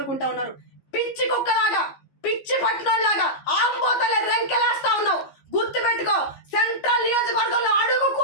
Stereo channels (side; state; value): right; late; 15 ms